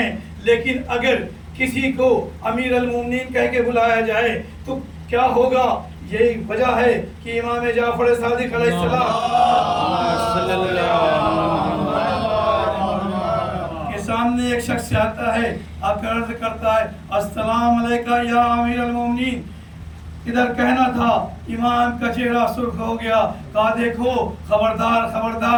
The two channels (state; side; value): identical; both; correlation 1.00